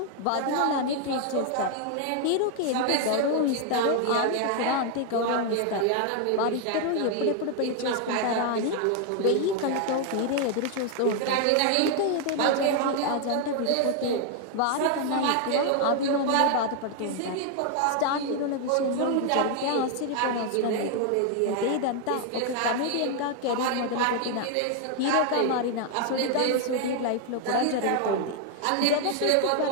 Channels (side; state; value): both; different; correlation 0.00